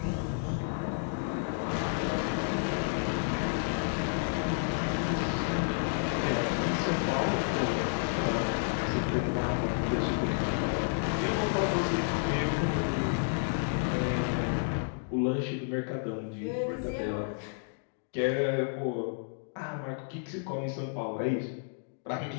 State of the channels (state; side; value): silent; right; digital silence